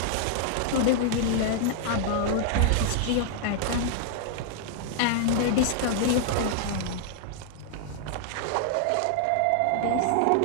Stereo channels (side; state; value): both; different; correlation -0.01